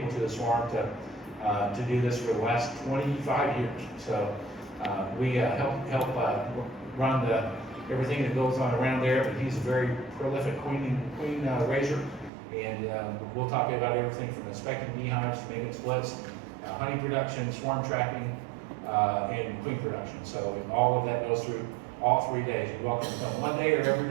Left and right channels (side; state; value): left; drops out; at 12.3 s